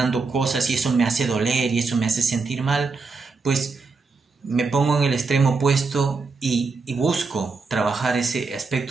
cosas y eso me hace doler y eso me hace sentir mal, pues me pongo en el extremo opuesto y busco trabajar ese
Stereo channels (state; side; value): quieter; left; 4.3 dB